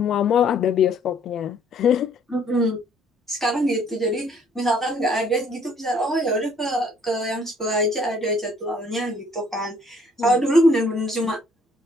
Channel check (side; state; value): both; normal; correlation 0.61